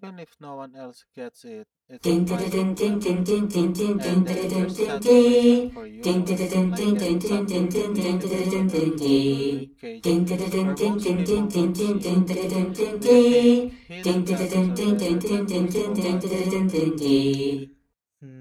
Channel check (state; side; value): identical; both; correlation 1.00